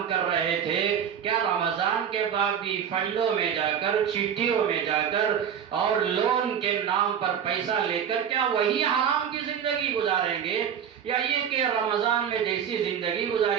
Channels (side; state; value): left; quieter; 8.3 dB